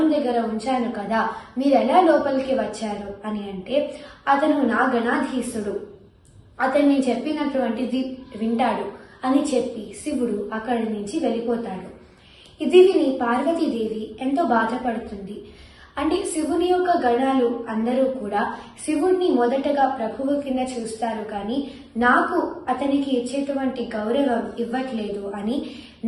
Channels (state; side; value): identical; both; correlation 1.00